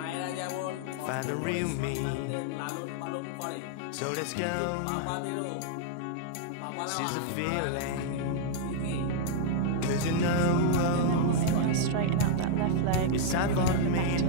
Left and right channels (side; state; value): both; different; correlation -0.01